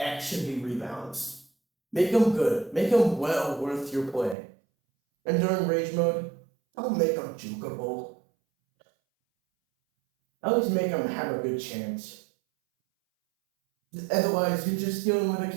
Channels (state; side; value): drops out; left; at 4.4 s